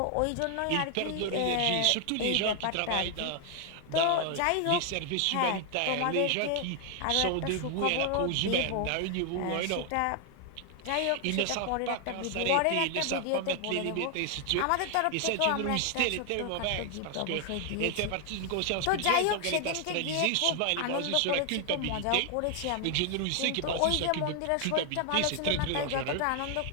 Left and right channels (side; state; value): both; different; correlation 0.00